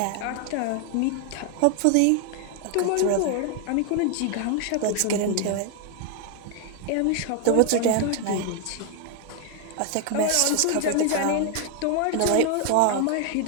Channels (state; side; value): different; both; correlation 0.01